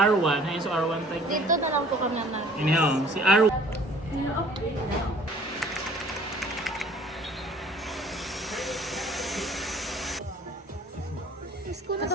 ayun so R1 tayo. Dito na lang po kami na. Iniho, si R1. School na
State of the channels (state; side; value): normal; both; correlation 0.53